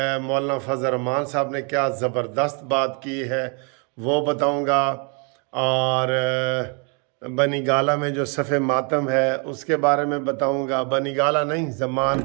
مولانا فضل الرحمان صاحب نے کیا زبردست بات کی ہے وہ بتاؤں گا، اور بنی گالہ میں جو صف ماتم ہے اس کے بارے میں بتاؤں گا۔ بنی گالہ نہیں،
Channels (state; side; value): quieter; left; 35.8 dB